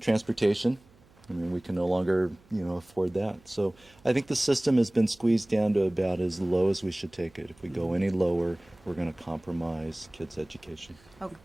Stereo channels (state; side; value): noise; right; hum, 28 dB below the sound